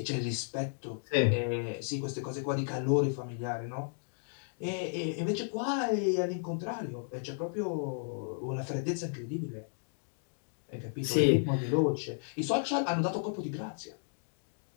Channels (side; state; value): right; silent; digital silence